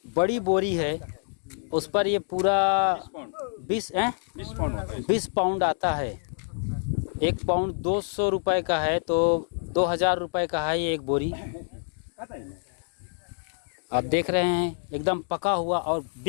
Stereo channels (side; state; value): right; silent; digital silence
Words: बड़ी बोरी है, उस पर ये पूरा 20 पाउंड आता है। 1 पाउंड 200 रुपए का है, तो 2000 रुपये का है ये एक बोरी। आप देख रहे हैं एकदम पका हुआ और